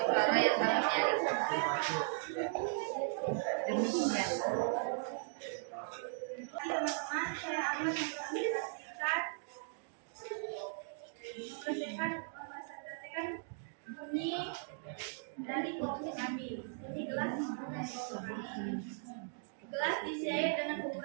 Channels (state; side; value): silent; left; digital silence